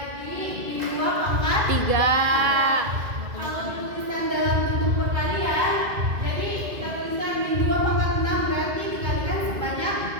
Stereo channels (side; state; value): left; late; 2.1 ms